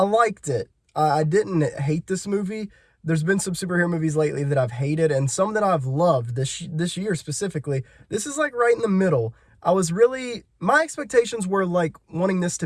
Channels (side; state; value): both; identical; correlation 1.00